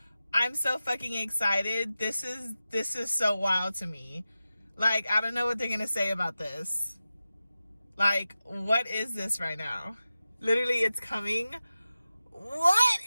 I'm so fucking excited. This is so wild to me. Like, I don't know what they're gonna say about this. Like, what is this right now? Literally, it's coming. What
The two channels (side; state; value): both; inverted; correlation -0.93